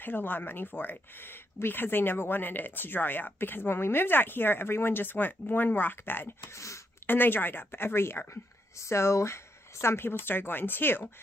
a lot of money for it because they never wanted it to dry up. Because when we moved out here, everyone just went 1 rock bed, and they dried up every year. So some people started going 2,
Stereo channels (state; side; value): normal; both; correlation 0.78